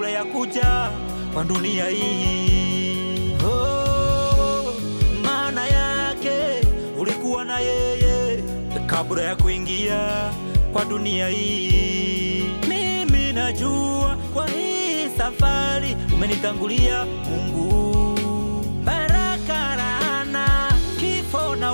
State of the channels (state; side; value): inverted; both; correlation -1.00